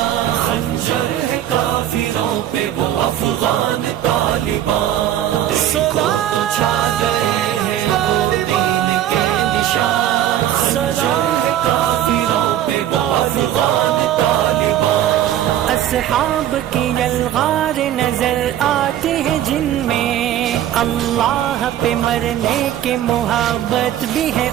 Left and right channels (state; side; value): quieter; left; 11.6 dB